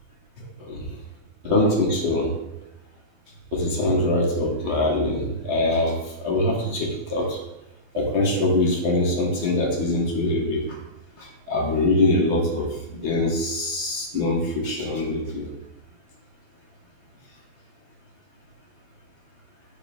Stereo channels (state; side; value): late; left; 12 ms